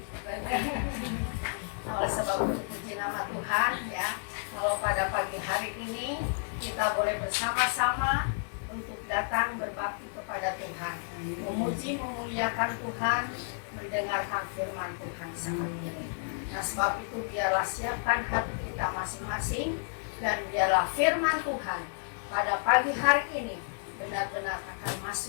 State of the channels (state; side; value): silent; right; 57 dB below the other